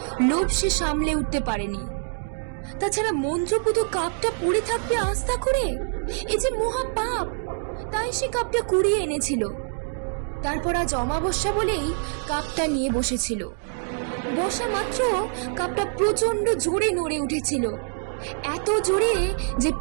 লোভ সে সামলে উঠতে পারেনি। তাছাড়া মন্ত্রপুত কাপটা পড়ে থাকবে আস্থা করে, এ যে মহা পাপ। তাই সে কাপটা কুড়িয়ে এনেছিল। তারপর আজ অমাবস্যা বলেই কাপটা নিয়ে বসেছিল। বসা মাত্র কাপটা প্রচন্ড জোরে নড়ে উঠেছিল, এত জোরে যে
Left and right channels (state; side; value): silent; left; 62 dB below the other